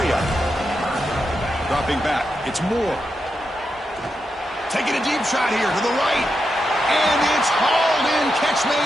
Dropping back, it's Moore. Taking a deep shot here to the right. And it's hauled in. Catch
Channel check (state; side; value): normal; both; correlation 0.86